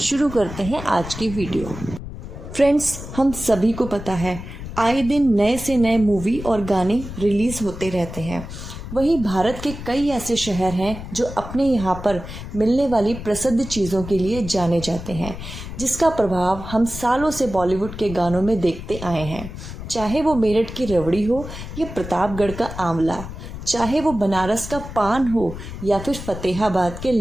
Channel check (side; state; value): left; noise; rumble, 10 dB below the sound